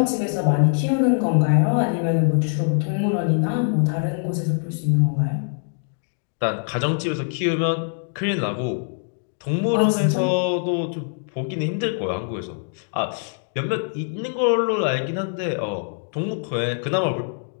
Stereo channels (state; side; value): silent; right; 63 dB below the other